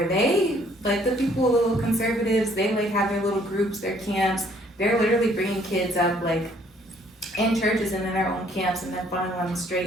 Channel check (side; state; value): both; normal; correlation 0.62